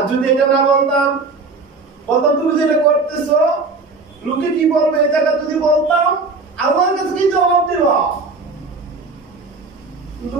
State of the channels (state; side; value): quieter; left; 3.9 dB